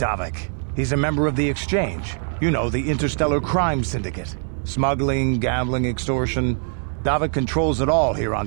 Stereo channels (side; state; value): left; silent; 56 dB below the other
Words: He's a member of the Exchange. You know, the interstellar crime syndicate. Smuggling, gambling, extortion. Davik controls it all here on